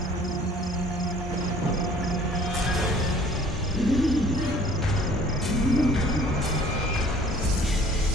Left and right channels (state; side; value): normal; both; correlation 0.53